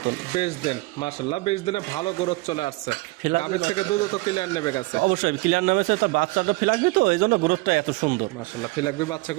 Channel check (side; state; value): left; quieter; 23.4 dB